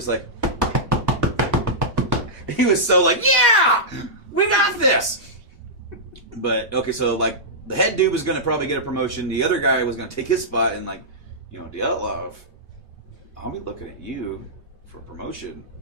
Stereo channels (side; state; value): both; normal; correlation -0.12